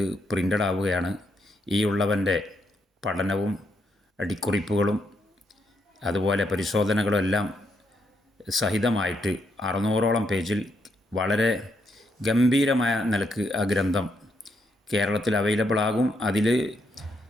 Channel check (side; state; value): both; normal; correlation 0.78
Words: പ്രിൻ്റഡ് ആവുകയാണ്. ഈ ഉള്ളവൻ്റെ പഠനവും അടിക്കുറിപ്പുകളും അതുപോലെ പരിശോധനകളും എല്ലാം സഹിതമായിട്ട് 600ഓളം പേജിൽ വളരെ ഗംഭീരമായ നിലക്ക് ആ ഗ്രന്ഥം കേരളത്തിൽ അവൈലബിൾ ആകും. അതിൽ